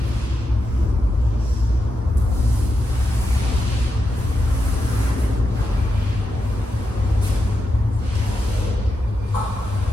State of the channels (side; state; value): both; normal; correlation 0.87